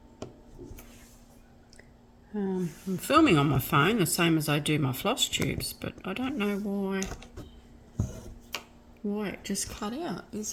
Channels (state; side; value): identical; both; correlation 1.00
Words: I'm filming on my phone the same as I do my floss tubes, but I don't know why it just cut out.